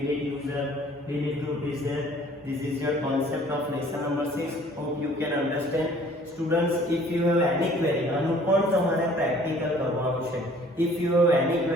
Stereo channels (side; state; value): both; normal; correlation 0.54